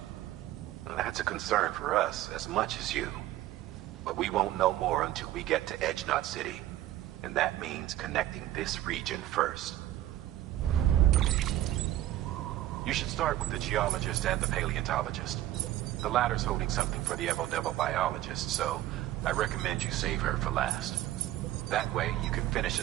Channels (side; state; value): left; quieter; 14.0 dB